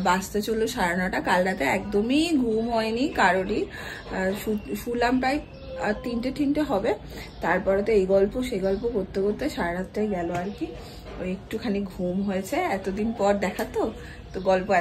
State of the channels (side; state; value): both; identical; correlation 1.00